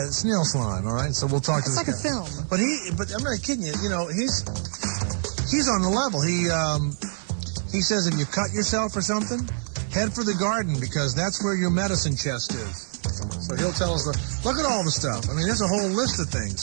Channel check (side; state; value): left; silent; 57 dB below the other